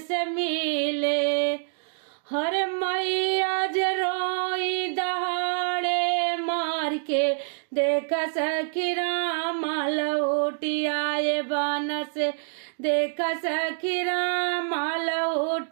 मिले, हर मैया रोई दहाड़े मार के, देख सखी राम लौटी आए बन से, देख सखी राम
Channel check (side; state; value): left; silent; digital silence